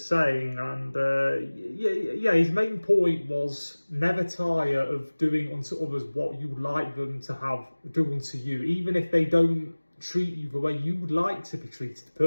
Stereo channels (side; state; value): both; inverted; correlation -1.00